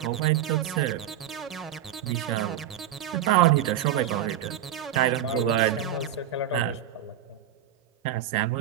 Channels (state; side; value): quieter; left; 10.5 dB